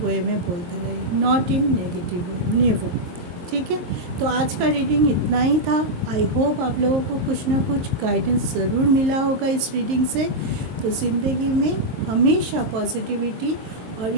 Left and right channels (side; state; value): left; late; 23 ms